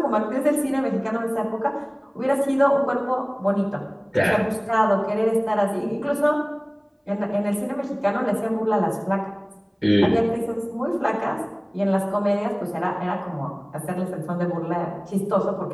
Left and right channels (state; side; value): identical; both; correlation 1.00